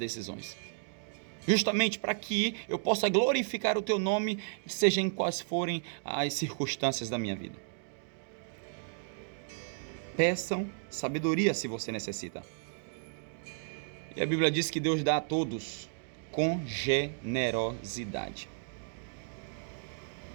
Justamente para que eu possa glorificar o Teu nome, seja em quais forem as circunstâncias da minha vida. Peçam sabedoria se você necessita. E a Bíblia diz que Deus dá a todos com generosidade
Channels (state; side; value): silent; left; digital silence